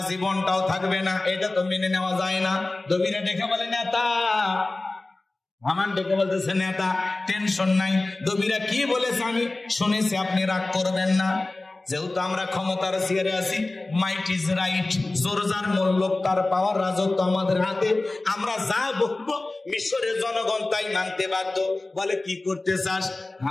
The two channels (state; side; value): quieter; right; 3.0 dB